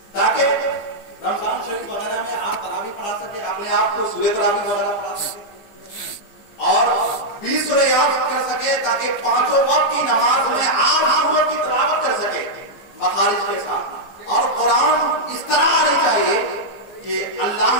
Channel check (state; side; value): late; right; 15 ms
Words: تاکہ رمضان شریف وغیرہ میں آپ تراویح پڑھا سکے، اپنے آپ کو سورہ تراویح وغیرہ پڑھا سکے اور 20 سورہ یاد کر سکے تاکہ 5 وقت کی نماز میں آپ سورت کی تلاوت کر سکے مخارج کے ساتھ. اور قرآن اس طرح آنی چاہیے کہ اللہ،